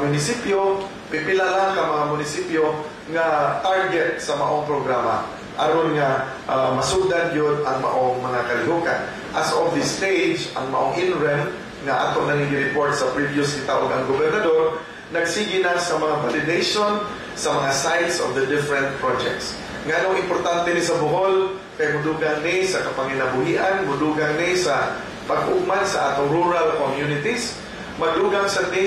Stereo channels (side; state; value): both; identical; correlation 1.00